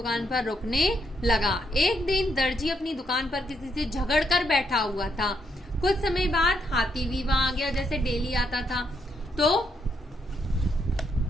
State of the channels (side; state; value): both; normal; correlation 0.77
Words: पर रुकने लगा। एक दिन दर्जी अपनी दुकान पर किसी से झगड़ कर बैठा हुआ था। कुछ समय बाद हाथी भी वहां आ गया, जैसे डेली आता था। तो